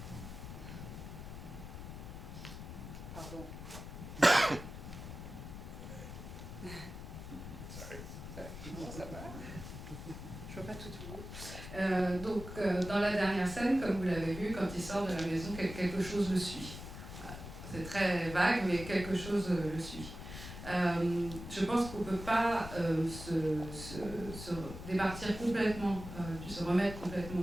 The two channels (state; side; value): noise; left; rumble, 10 dB below the sound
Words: Pardon. Sorry. Non, ça va. Je vois pas tout le monde. Dans la dernière scène, comme vous l'avez vu, quand il sort de la maison, quelque chose le suit. Voilà. C'est très vague, mais quelque chose le suit. Je pense qu'on ne peut pas se départir complètement, se remettre complètement